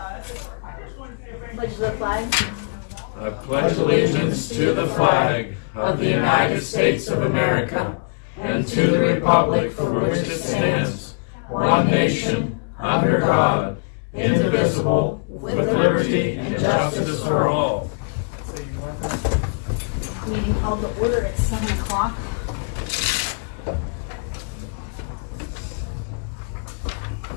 I just want to see if Pledge the flag. I pledge allegiance to the flag of the United States of America and to the republic for which it stands, one nation, under God, indivisible, with liberty and justice for all. Meeting called to order at 7 o'clock.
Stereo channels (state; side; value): quieter; right; 39.4 dB